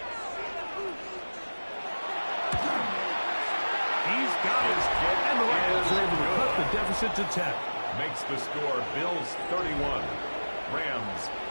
He's got it. And the Rams are able to cut the deficit to 10. Makes the score Bills 31, Rams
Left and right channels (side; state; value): both; inverted; correlation -1.00